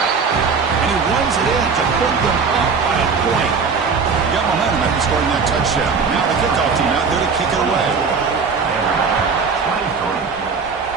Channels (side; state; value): left; quieter; 5.3 dB